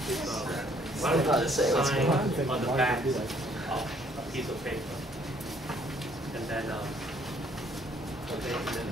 Why don't you just sign on. on the back of a piece of paper, and then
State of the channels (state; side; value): normal; both; correlation 0.64